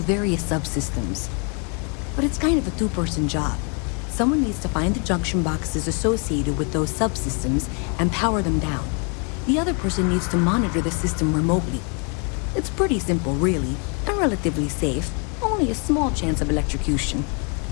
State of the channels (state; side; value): quieter; right; 36.9 dB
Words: subsystems. But it's kind of a 2-person job. Someone needs to find the junction boxes associated with those subsystems and power them down. The other person needs to monitor the system remotely. It's pretty simple, really, and relatively safe. Only a small chance of electrocution.